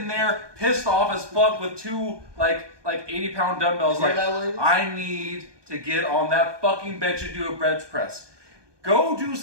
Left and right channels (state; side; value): late; left; 1.2 ms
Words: there pissed off as fuck with two like 80-pound dumbbells. Hear Like that, ladies? I need to get on that fucking bench and do a bench press. Go do